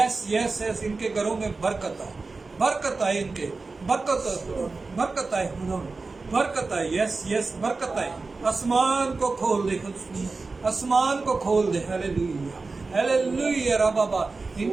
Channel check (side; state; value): left; quieter; 3.9 dB